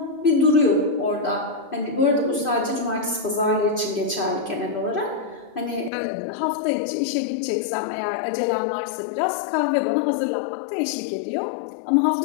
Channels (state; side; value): drops out; right; at 5.9 s